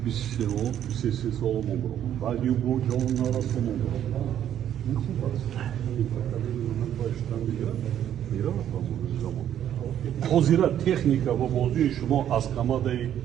23 сол мобарок. Баъди бо ҷон нарасо мобарок. Ин хуб аст. Ин поколение ман баштан меравад ба замон. Ҳозира техника ва бозии шумо аз командаи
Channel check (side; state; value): left; quieter; 10.4 dB